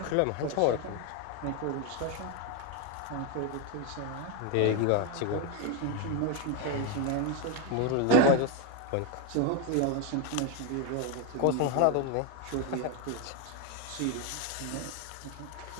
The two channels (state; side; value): different; both; correlation 0.02